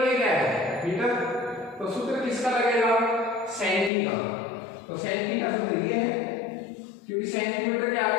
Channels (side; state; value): right; drops out; at 3.9 s